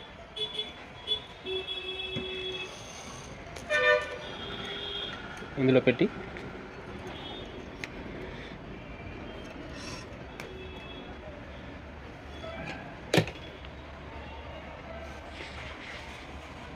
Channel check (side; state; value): both; identical; correlation 1.00